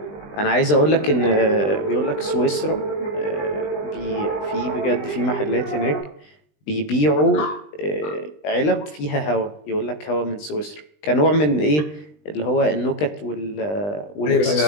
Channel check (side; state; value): right; late; 20 ms